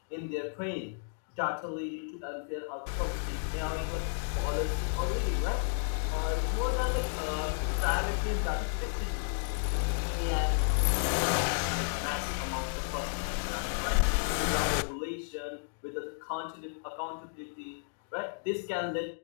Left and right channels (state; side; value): silent; right; digital silence